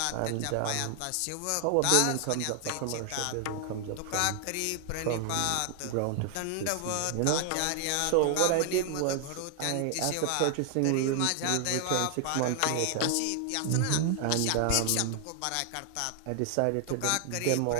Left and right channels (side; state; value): both; different; correlation 0.00